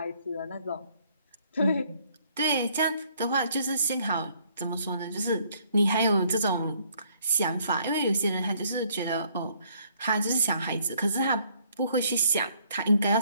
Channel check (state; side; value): inverted; both; correlation -0.65